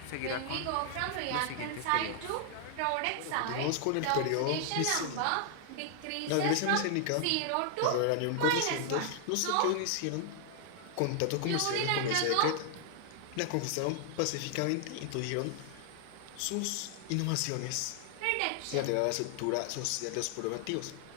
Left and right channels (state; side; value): different; both; correlation 0.00